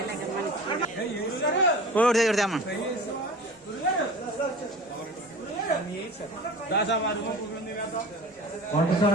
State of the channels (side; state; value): both; normal; correlation 0.38